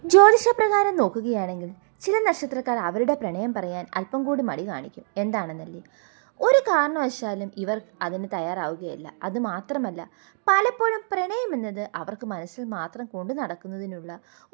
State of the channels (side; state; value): left; silent; digital silence